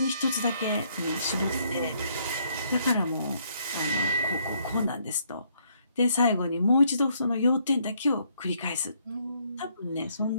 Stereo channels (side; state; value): both; inverted; correlation -0.69